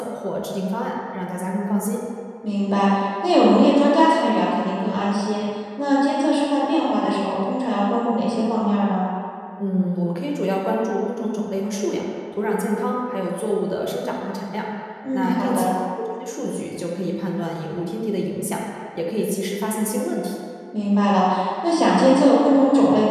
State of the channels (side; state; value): both; identical; correlation 1.00